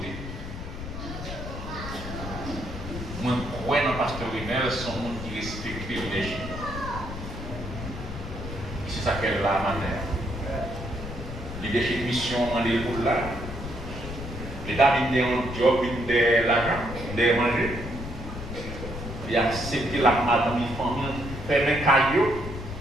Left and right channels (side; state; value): left; noise; rumble, 8 dB below the sound